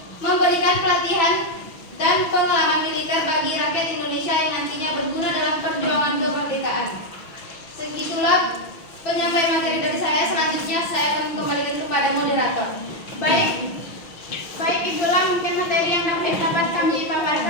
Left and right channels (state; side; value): late; right; 6.1 ms